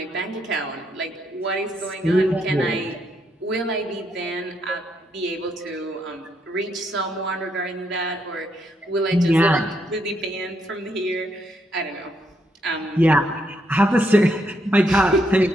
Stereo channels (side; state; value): both; normal; correlation 0.76